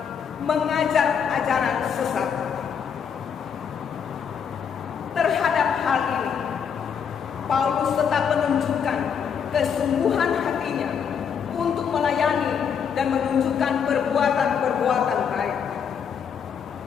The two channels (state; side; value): quieter; right; 7.3 dB